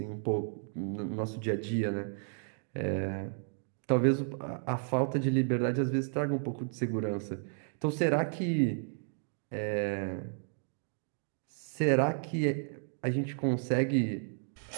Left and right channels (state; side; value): silent; left; 56 dB below the other